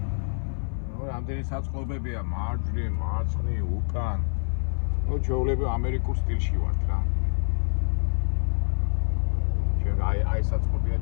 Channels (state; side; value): silent; right; 58 dB below the other